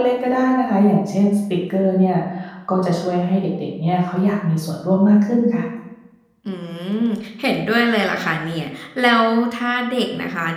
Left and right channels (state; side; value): identical; both; correlation 1.00